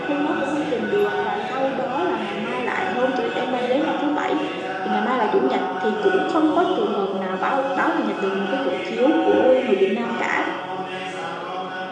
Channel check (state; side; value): identical; both; correlation 1.00